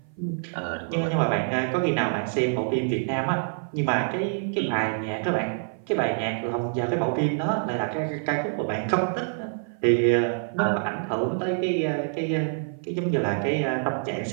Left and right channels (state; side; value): silent; left; 57 dB below the other